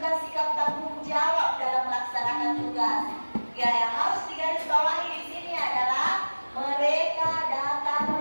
sikap tanggung jawab dalam melaksanakan tugas. Ya, yang harus digarisbawahi di sini adalah mereka datang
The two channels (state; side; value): inverted; both; correlation -1.00